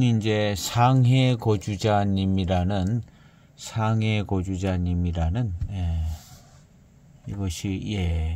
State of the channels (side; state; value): both; identical; correlation 1.00